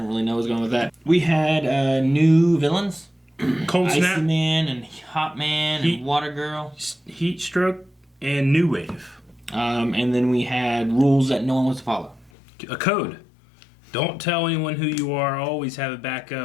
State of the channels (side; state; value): right; drops out; at 12.3 s